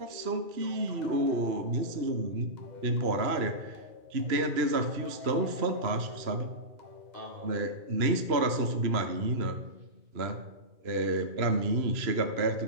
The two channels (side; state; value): left; late; 2.9 ms